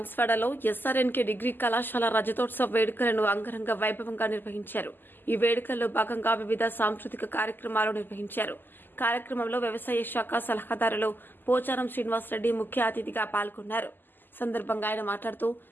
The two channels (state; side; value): late; right; 0.091 ms